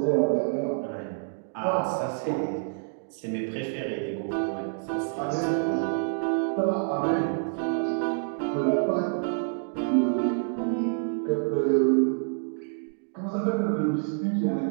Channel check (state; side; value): silent; left; digital silence